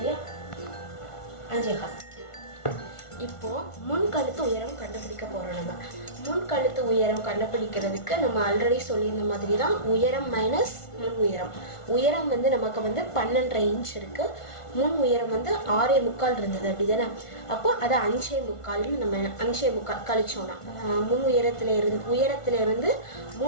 5.25. இப்போ முன் கழுத்து உயரம் கண்டுபிடிக்க போறோம். நம்ம முன் கழுத்து உயரம் கண்டுபிடிக்கிறதுக்கு நம்ம ஆல்ரெடி சொல்லியிருந்த மாதிரி தான் உயரம் மைனஸ் முன் உயரம். உயரம் வந்து நமக்கு வந்து 12.5 இன்ச் இருக்கு. முன் உயரம் வந்து 6.25 இருந்தது, அப்படிதானே? அப்போ அதை 5.25 நம்ம 5.25 கழிச்சோம்னா முன் உயரத்துல இருந்து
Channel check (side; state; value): right; late; 1.5 ms